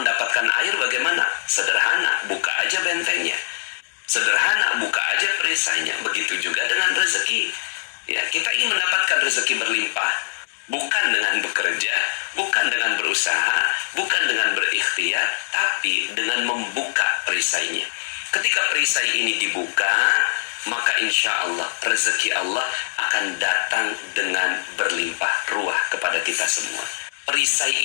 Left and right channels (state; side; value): silent; right; digital silence